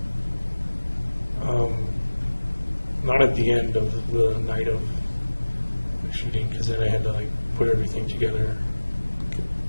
Not at the end of the night of the shooting, because then I had to like put everything together. Okay.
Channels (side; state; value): both; inverted; correlation -1.00